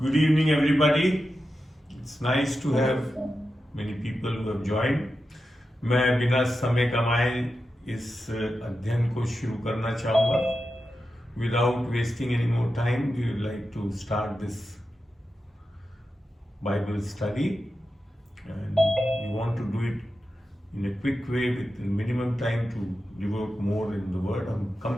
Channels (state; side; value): normal; both; correlation 0.90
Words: Good evening, everybody. It's nice to have many people who have joined. मैं बिना समय कमाए इस अध्ययन को शुरू करना चाहूँगा. Without wasting any more time, we would like to start this Bible study, and we want to do it in a quick way with minimum time to devote more in the Word. हम कम